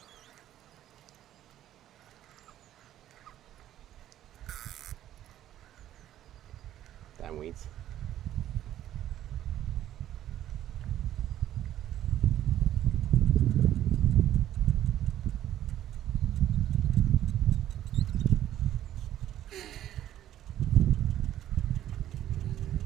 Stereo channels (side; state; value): left; quieter; 12.2 dB